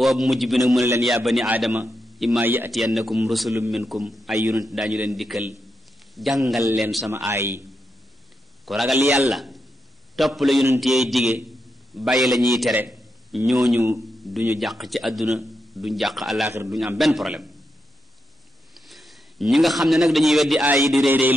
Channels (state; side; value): normal; both; correlation 0.85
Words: mujj bi nag mu ne leen yaa bani aadama imma yatiyannakum rusulun minkum ay yonent daañu leen dikkal jàngal leen sama aay ku ragal yàlla topp la yonent yee dige bàyyi la ñuy tere ñooñu duñu jàq ci àdduna duñ jàq àllaaxira duñu am benn problème ñi nga xam ne nag dañuy weddi aay yi di réy réy